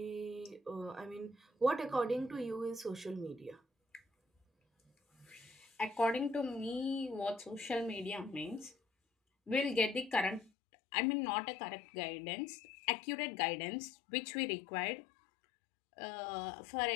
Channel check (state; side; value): drops out; right; at 10.5 s